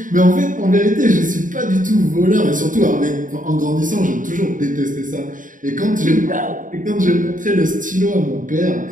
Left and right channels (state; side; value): late; left; 0.38 ms